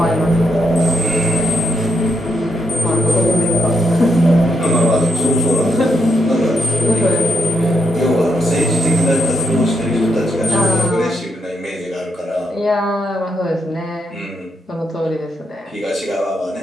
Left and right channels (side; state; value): both; normal; correlation 0.79